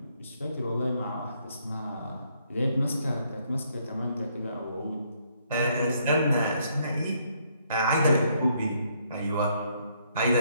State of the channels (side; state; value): both; inverted; correlation -0.70